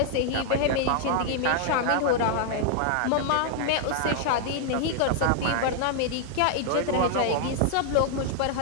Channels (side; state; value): both; different; correlation -0.01